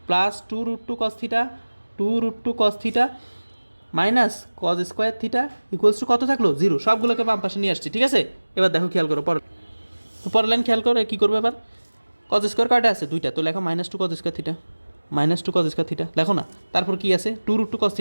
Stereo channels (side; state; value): both; inverted; correlation -1.00